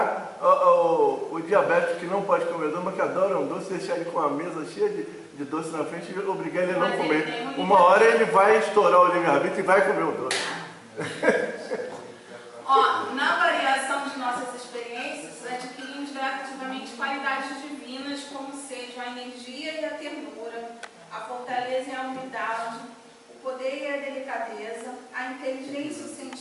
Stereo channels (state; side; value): identical; both; correlation 1.00